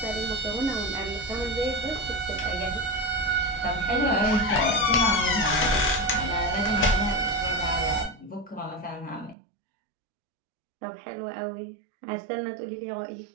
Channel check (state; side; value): drops out; left; at 9.3 s